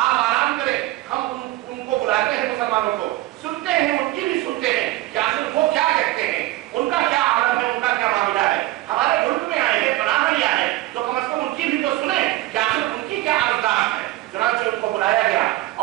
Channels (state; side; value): quieter; left; 17.3 dB